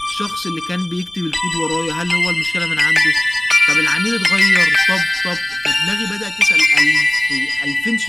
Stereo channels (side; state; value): right; noise; rumble, 26 dB below the sound